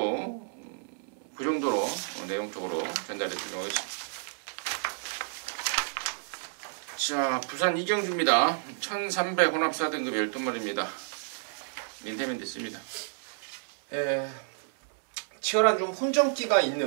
내용적으로 전달해 드리도록 하겠습니다. 자, 부산 이경주입니다. 1300 혼합 4등급 12마리입니다. 민태면 됐습니다. 치열한 좀 혼전기가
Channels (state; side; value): silent; left; 57 dB below the other